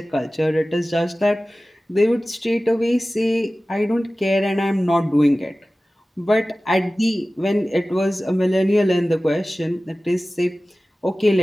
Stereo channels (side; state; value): both; normal; correlation 0.97